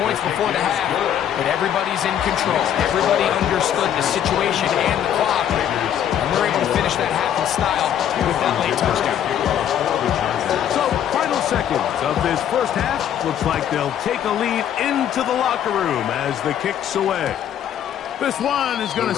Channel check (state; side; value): quieter; right; 10.0 dB